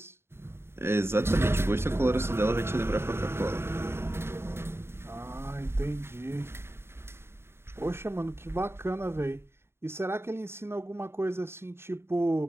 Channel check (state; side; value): late; left; 0.12 ms